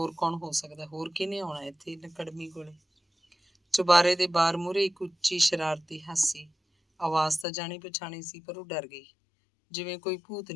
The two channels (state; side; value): drops out; right; at 7.5 s